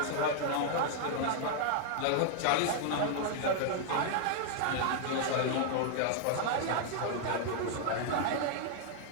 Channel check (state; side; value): different; both; correlation -0.01